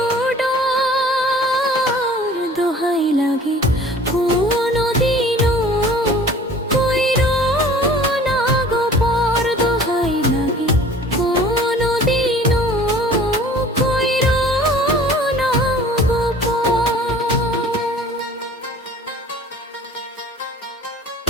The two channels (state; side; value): normal; both; correlation 0.48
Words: ডর, দোহাই লাগে কোনদিনও কইরো না গো পর, দোহাই লাগে কোনদিনও কইরো না গো